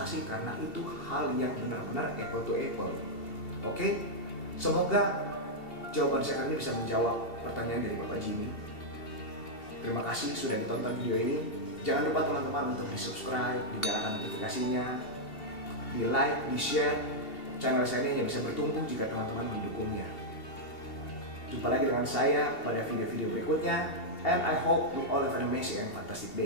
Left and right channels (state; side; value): late; right; 2.7 ms